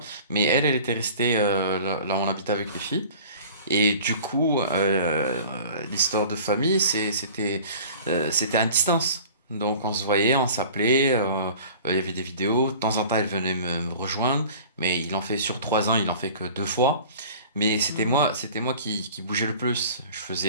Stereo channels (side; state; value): both; inverted; correlation -0.44